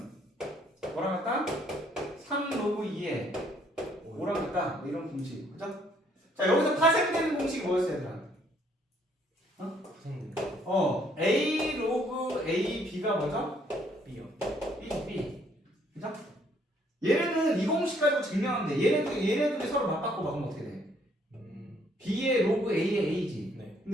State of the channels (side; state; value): both; normal; correlation 0.66